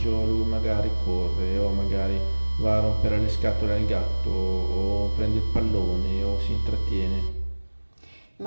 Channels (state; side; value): inverted; both; correlation -1.00